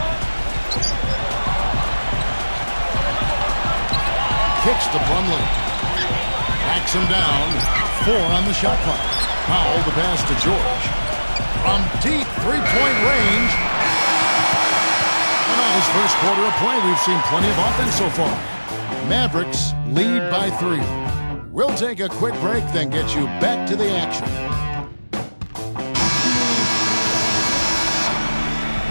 Kicks to Plumlee. Backs him down. 4 on the shot clock. Powell the pass to George. From deep three-point range. And on his first quarter of play, we've seen plenty of offense so far. Mavericks lead by 3. We'll take a quick break, then get you back to the action.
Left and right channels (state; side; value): inverted; both; correlation -1.00